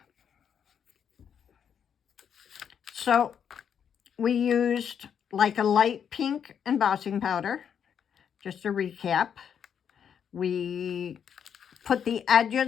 So we used like a light pink embossing powder, just to recap. We put the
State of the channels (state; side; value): quieter; right; 8.0 dB